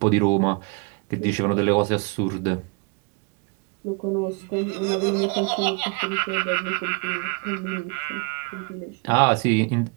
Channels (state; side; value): quieter; left; 31.7 dB